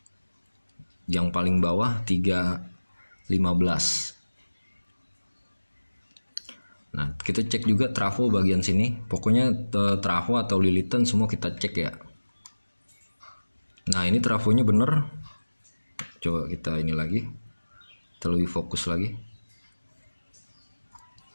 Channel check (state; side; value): inverted; both; correlation -1.00